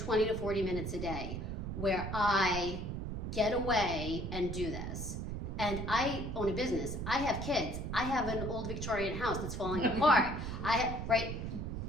to 40 minutes a day, where I get away and do this. And I own a business. I have kids. I have an old Victorian house that's falling apart.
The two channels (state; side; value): noise; right; rumble, 4 dB below the sound